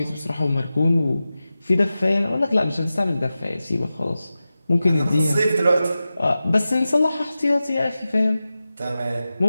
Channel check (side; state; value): both; inverted; correlation -0.94